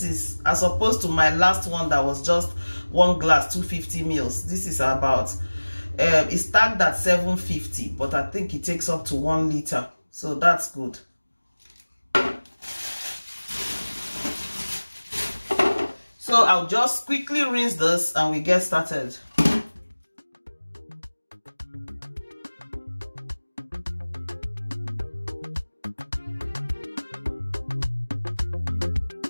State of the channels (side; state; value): both; inverted; correlation -1.00